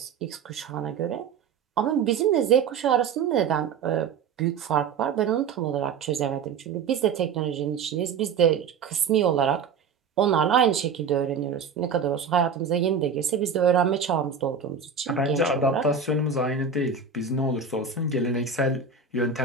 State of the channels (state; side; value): quieter; left; 5.9 dB